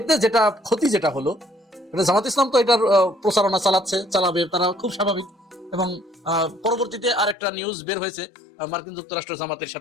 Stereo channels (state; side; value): drops out; right; at 7.4 s